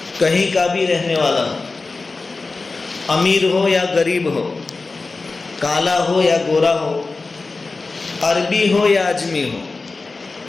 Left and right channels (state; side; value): quieter; right; 3.8 dB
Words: کہیں کا بھی رہنے والا ہو، امیر ہو یا غریب ہو، کالا ہو یا گورا ہو، عربی ہو یا اجمی ہو،